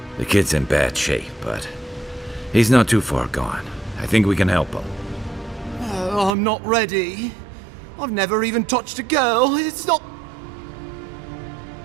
The kid's in bad shape, but he's not too far gone. I think we can help him. I'm not ready. I've never even touched a girl. It's not...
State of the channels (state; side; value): drops out; left; at 6.3 s